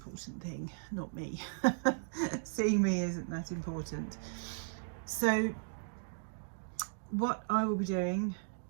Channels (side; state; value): left; silent; digital silence